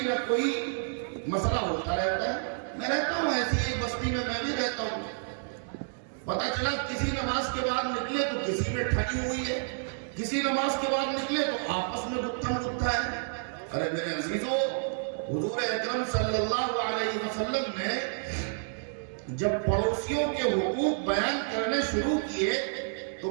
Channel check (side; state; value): left; silent; digital silence